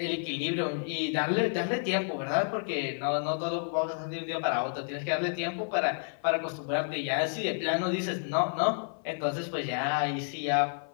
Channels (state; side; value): silent; right; 57 dB below the other